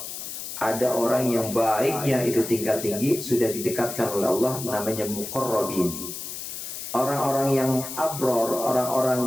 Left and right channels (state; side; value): noise; left; hiss, 8 dB below the sound